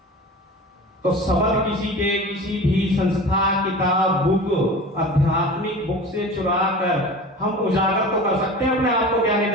तो शब्द किसी के किसी भी संस्था, किताब, बुक, आध्यात्मिक बुक से चुरा कर हम उजागर तो कर सकते हैं अपने आप को ज्ञानी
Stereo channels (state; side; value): normal; both; correlation 0.36